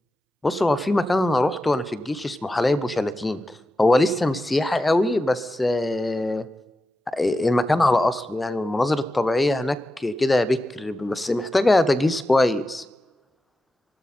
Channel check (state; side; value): normal; both; correlation 0.91